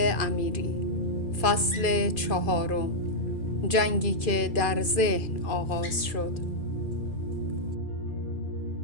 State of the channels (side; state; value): right; late; 2.4 ms